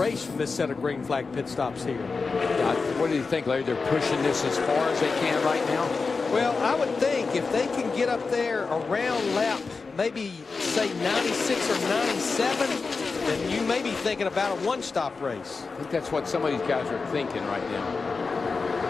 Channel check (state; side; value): quieter; right; 4.4 dB